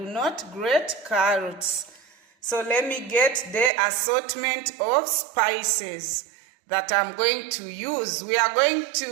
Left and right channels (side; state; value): left; drops out; at 3.7 s